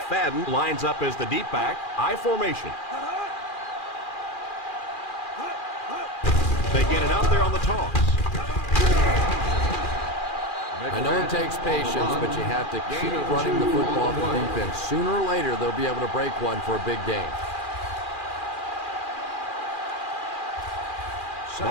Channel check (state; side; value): late; right; 2.4 ms